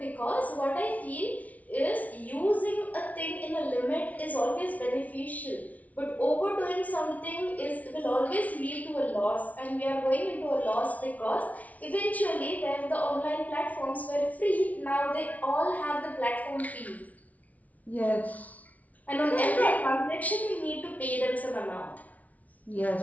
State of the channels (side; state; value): right; late; 0.071 ms